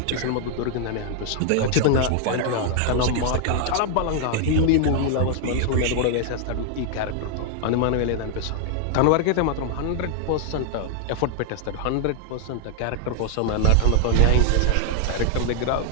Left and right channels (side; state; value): both; different; correlation 0.00